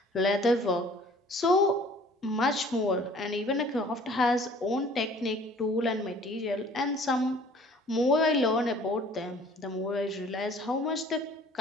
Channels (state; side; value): normal; both; correlation 0.52